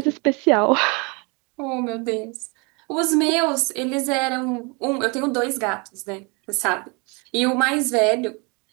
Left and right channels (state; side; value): quieter; left; 30.4 dB